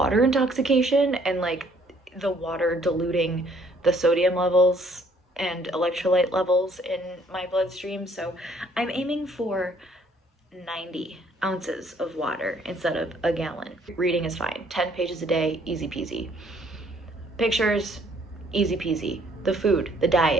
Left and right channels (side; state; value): both; normal; correlation 0.63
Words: intoxication and like the water diluting the sodium levels and electrolyte levels in my bloodstream. So I'm aiming for 90 ounces of water instead of a gallon. Reading is fine. 10 pages a day, easy peasy. Pictures, easy peasy. The food, the